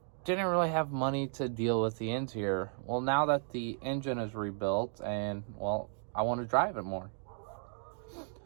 didn't really have money to deal with the interior. Well, now that the engine is rebuilt and, well, I want to drive it more.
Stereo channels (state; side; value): silent; left; 55 dB below the other